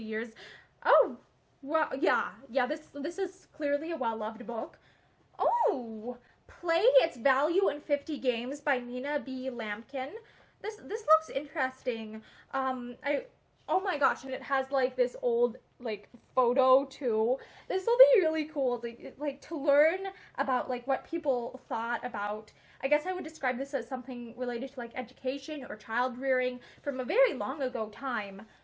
years. Oh, well, yeah, this is clearly a well-loved book. Oh, Play Its Value in 50 Games by Nina B. Lampkin. This looks interesting. Oh my gosh, and it has like this old like photo too. This will be really cool to learn about like what people thought about. I guess I would describe this as something related to like education or child rearing from a very long ago time.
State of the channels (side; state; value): both; identical; correlation 1.00